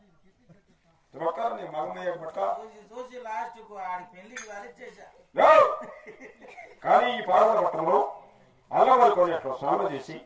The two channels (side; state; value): both; identical; correlation 1.00